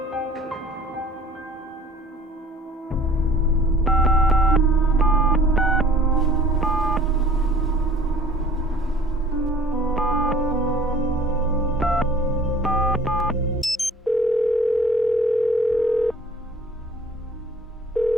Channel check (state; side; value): normal; both; correlation 0.49